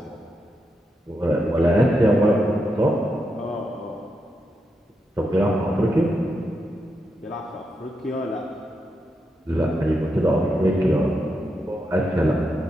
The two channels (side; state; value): both; normal; correlation 0.84